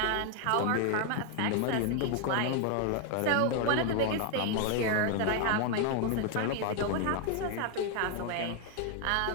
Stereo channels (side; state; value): both; different; correlation 0.00